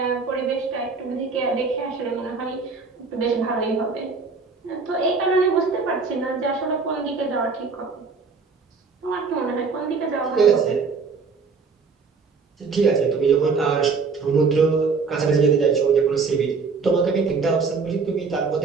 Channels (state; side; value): quieter; left; 4.8 dB